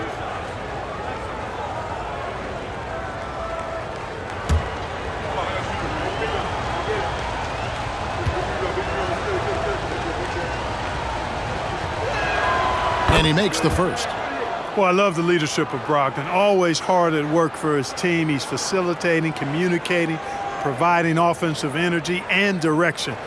And he makes the first. Well, I love the leadership of Brogdon. Always hard at work for his team. He's facilitating, communicating, providing offensive energy and direction.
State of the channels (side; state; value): both; identical; correlation 1.00